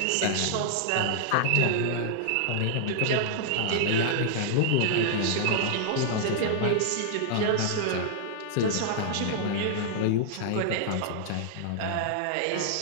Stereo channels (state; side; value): different; both; correlation -0.01